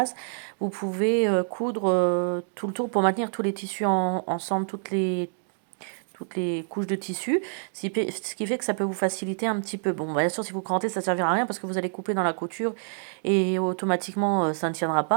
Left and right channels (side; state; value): left; silent; digital silence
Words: Vous pouvez coudre tout le tour pour maintenir tous les tissus ensemble, toutes les couches de tissu, ce qui fait que ça peut vous faciliter un petit peu. Bon, bien sûr, si vous crantez, ça ne servira à rien parce que vous allez couper dans la couture et automatiquement, ça ne tiendra